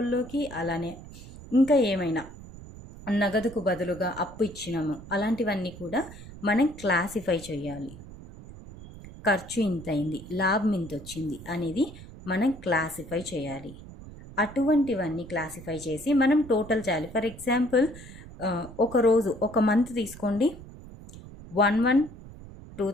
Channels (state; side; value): noise; right; rumble, 16 dB below the sound